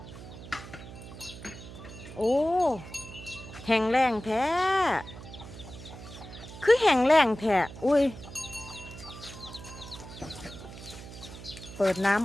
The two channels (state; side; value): noise; right; hum, 14 dB below the sound